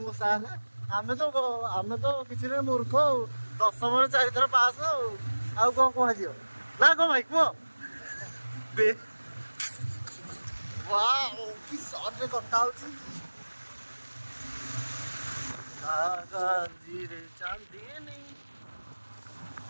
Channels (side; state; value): both; inverted; correlation -1.00